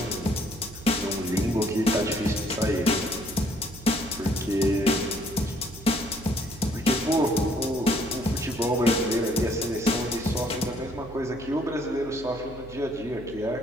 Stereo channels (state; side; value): noise; right; hum, 16 dB below the sound